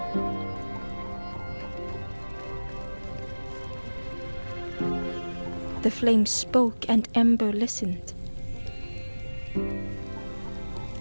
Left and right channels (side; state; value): both; inverted; correlation -1.00